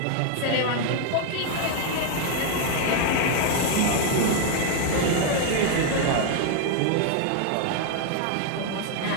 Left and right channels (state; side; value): different; both; correlation 0.00